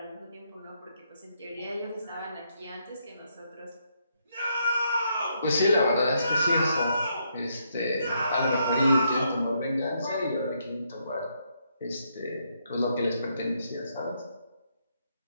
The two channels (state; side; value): inverted; both; correlation -0.76